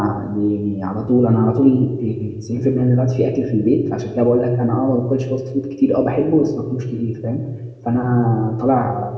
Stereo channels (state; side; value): identical; both; correlation 1.00